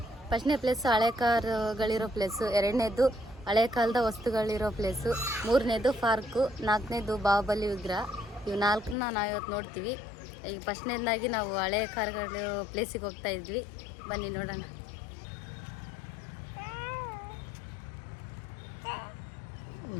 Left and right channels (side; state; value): right; drops out; at 9.0 s